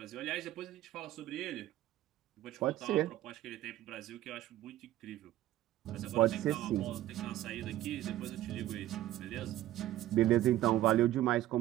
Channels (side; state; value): left; quieter; 14.2 dB